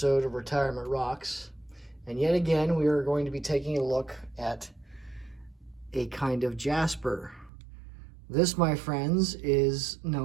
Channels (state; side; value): drops out; left; at 7.5 s